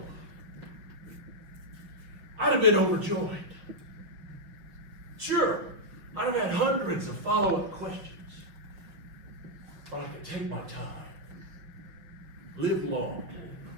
I'd have been overjoyed. Sure, I'd have had hundreds of follow-up questions, but I could take my time, live long,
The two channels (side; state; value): left; late; 5.9 ms